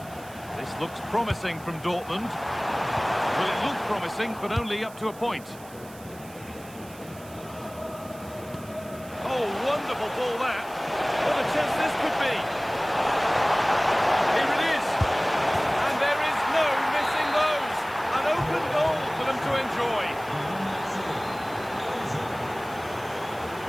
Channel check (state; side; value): noise; right; hiss, 21 dB below the sound